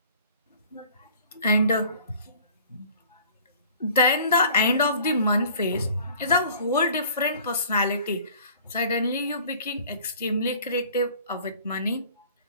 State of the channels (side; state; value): both; inverted; correlation -0.50